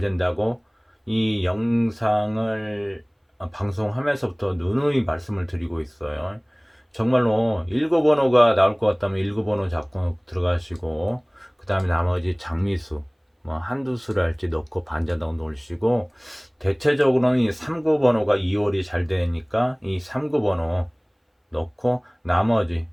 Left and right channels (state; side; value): identical; both; correlation 1.00